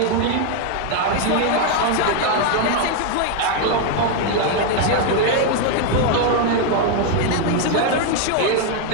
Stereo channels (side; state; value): both; different; correlation 0.01